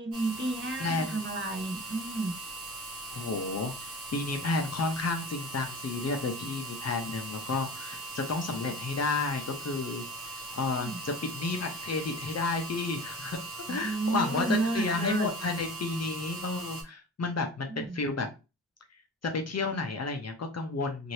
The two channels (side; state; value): both; normal; correlation 0.35